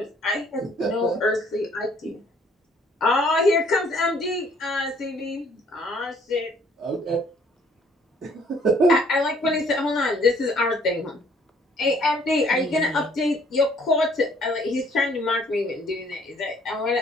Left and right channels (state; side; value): normal; both; correlation 0.61